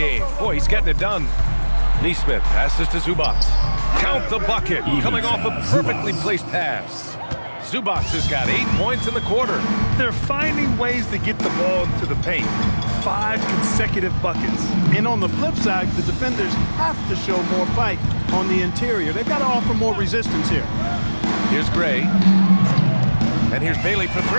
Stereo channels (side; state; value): both; inverted; correlation -1.00